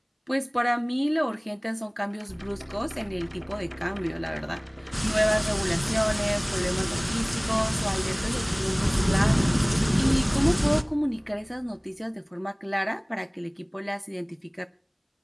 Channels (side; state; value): both; identical; correlation 1.00